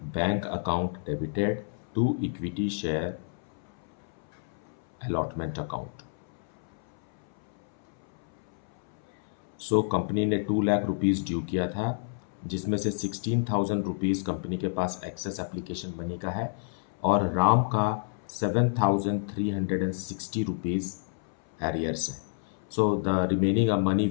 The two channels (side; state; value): right; silent; 58 dB below the other